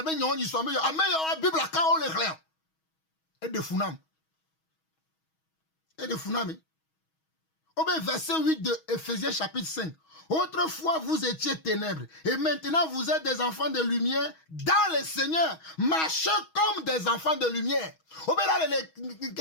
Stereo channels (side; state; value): right; late; 6.3 ms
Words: be nyon yi so me yo ameyo bible aka o le glen e de funam au verset 8 de Ephésiens chapitre 5. Autrefois vous étiez ténèbres et maintenant vous êtes des enfants de lumière dans le Seigneur. Marchez comme des enfants de lumière. Au là